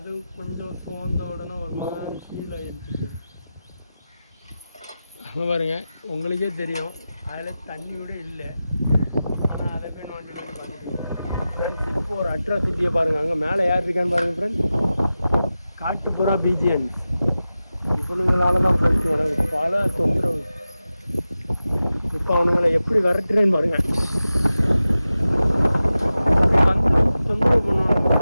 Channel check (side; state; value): both; inverted; correlation -0.94